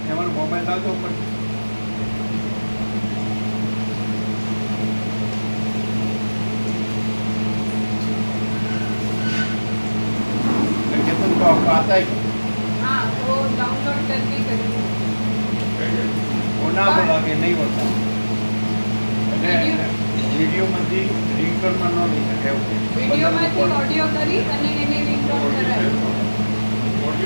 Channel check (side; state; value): both; inverted; correlation -1.00